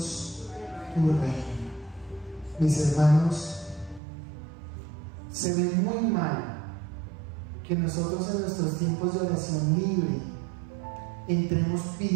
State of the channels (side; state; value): left; drops out; at 4.0 s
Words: tu reino. Mis hermanos, se ve muy mal que nosotros en nuestros tiempos de oración libre entremos